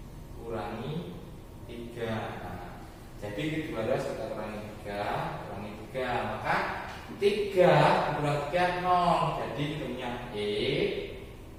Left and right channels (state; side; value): identical; both; correlation 1.00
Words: 3. Nah, jadi kedua ruas kita kurangi 3, maka 3 kurang 3 0. Jadi punya x